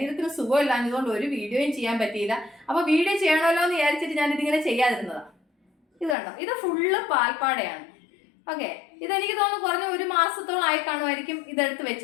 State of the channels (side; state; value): right; drops out; at 6.2 s